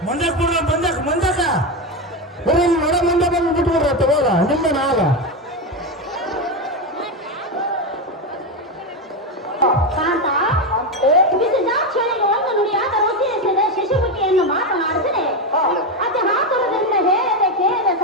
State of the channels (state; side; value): normal; both; correlation 0.12